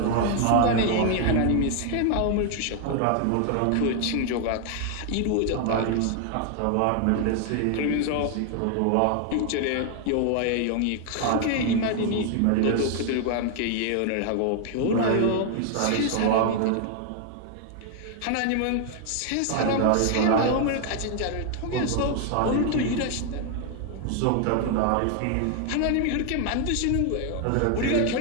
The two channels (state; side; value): different; both; correlation 0.00